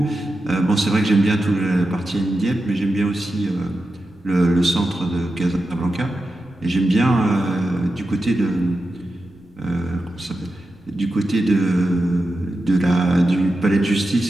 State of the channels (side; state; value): right; noise; rumble, 29 dB below the sound